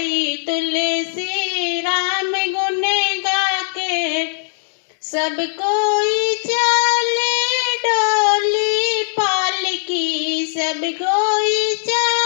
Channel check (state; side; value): silent; right; digital silence